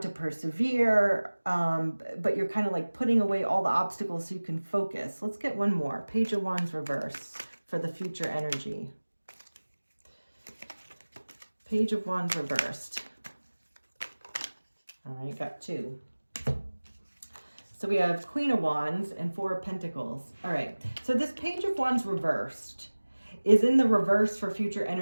persevere, but you're kind of like putting away all the obstacles so you can focus. Let's get one more. Page of Wands reverse for the future energy. Page of Wands reversed. All right, got two. So we have Queen of Wands and Four of Pentacles. All right, so this Page of Wands reversed is in the reverse for future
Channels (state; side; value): inverted; both; correlation -1.00